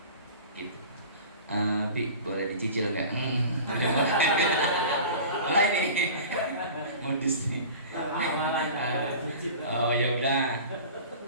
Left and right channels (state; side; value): inverted; both; correlation -0.39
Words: Gitu. Pi, boleh dicicil nggak? Mulai nih. Modus nih. Oh ya udah.